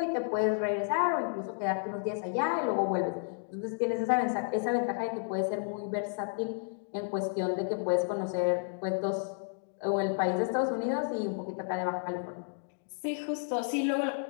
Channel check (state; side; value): silent; right; digital silence